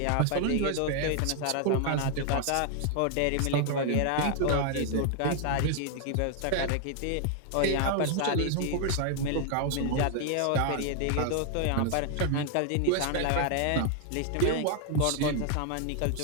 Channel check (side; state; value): both; different; correlation 0.00